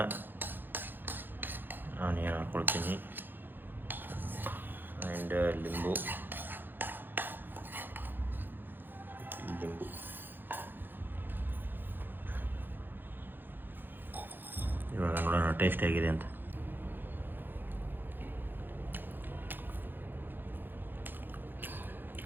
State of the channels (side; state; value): left; late; 0.094 ms